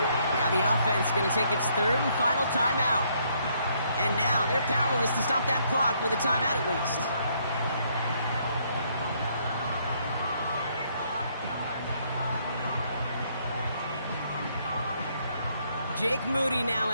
Now the offense going to take its 3rd and final timeout. And now they're powerless to stop that clock with a timeout at least. Jake Moody now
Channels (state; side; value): inverted; both; correlation -0.70